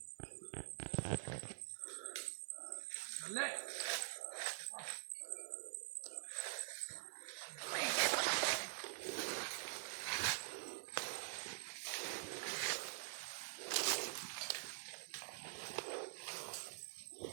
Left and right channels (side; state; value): left; silent; digital silence